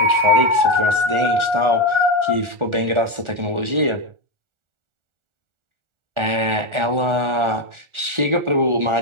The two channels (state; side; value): late; left; 1.4 ms